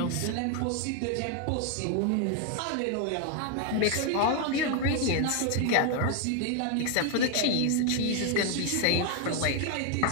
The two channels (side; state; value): both; different; correlation 0.01